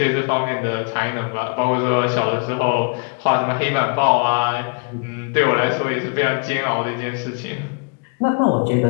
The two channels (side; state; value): right; quieter; 36.1 dB